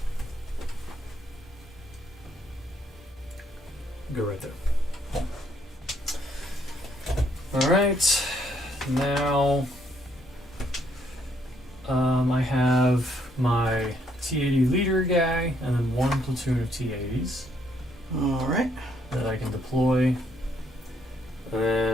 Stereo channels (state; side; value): normal; both; correlation 0.71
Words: Go right there. All right. Now, I have my T-80 leader guy, and then one platoon of T-80s. All right. That I can deploy. And